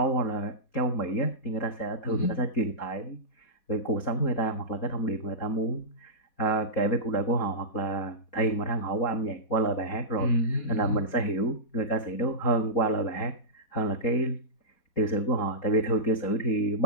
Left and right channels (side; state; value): right; late; 4.2 ms